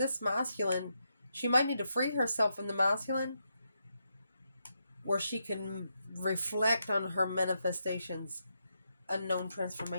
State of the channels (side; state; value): both; inverted; correlation -0.83